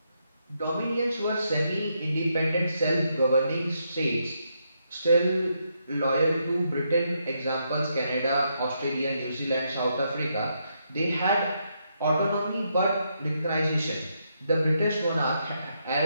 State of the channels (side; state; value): both; inverted; correlation -0.79